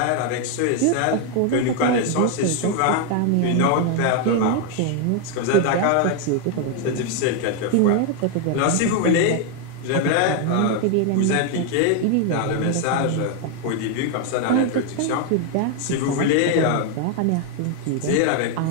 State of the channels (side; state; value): both; different; correlation 0.01